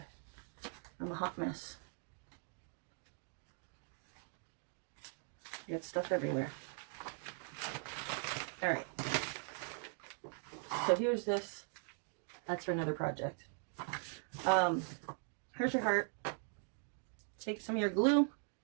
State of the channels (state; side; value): silent; left; 50 dB below the other